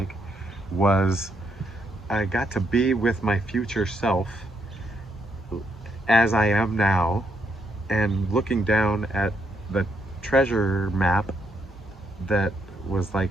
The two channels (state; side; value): normal; both; correlation 0.76